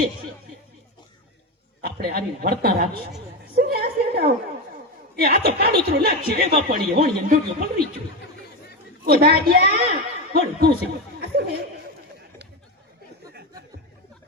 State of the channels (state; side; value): normal; both; correlation 0.15